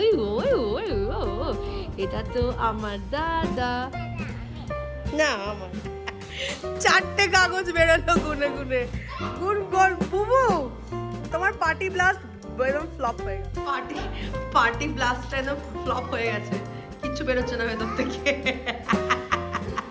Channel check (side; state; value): both; identical; correlation 1.00